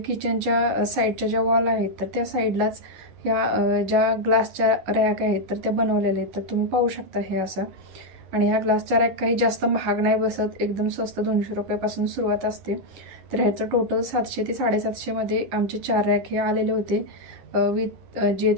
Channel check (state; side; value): late; left; 10 ms